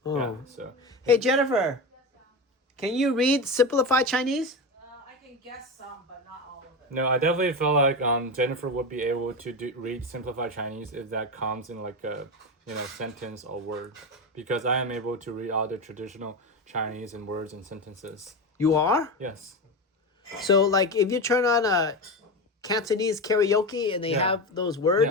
Oh. Yeah. So Hey Jennifer, can you read simplified Chinese? I can guess some, but not all of it. no, I definitely feel like Jennifer would be able to read simplified Chinese if that comes in like a sentence or word, because I am able to read all the traditional Chinese and words and sentences. You are? Yes. So like if you turn on a Cantonese karaoke and they Yeah. have those words,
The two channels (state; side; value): normal; both; correlation 0.20